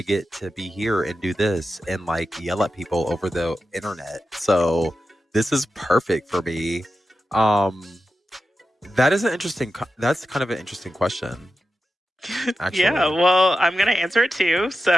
get to be here and do this and like yell at people over the internet. So this is perfect for me. That's kind of an interesting question. Actually. Yeah, well, I'm going to answer it too. So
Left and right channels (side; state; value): both; normal; correlation 0.91